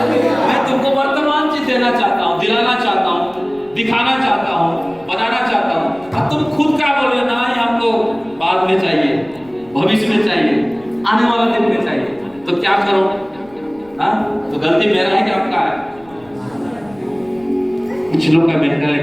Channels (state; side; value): noise; left; rumble, 27 dB below the sound